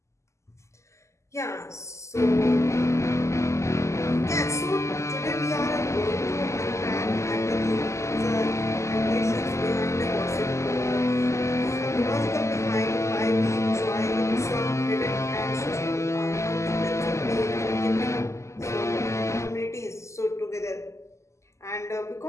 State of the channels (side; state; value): right; late; 0.14 ms